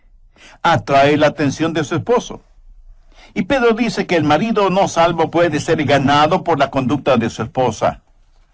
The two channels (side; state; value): both; identical; correlation 1.00